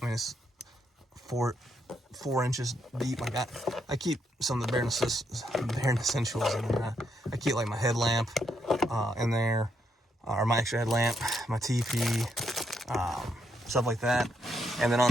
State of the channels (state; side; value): normal; both; correlation 0.78